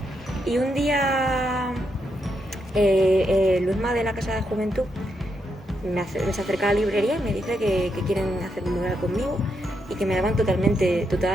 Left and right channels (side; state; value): both; normal; correlation 0.81